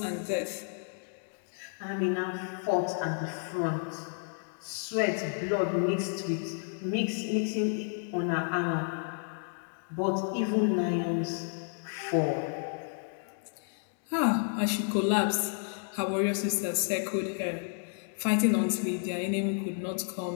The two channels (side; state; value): right; silent; 56 dB below the other